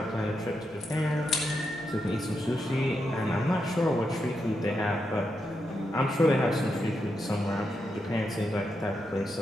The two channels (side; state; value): both; normal; correlation 0.84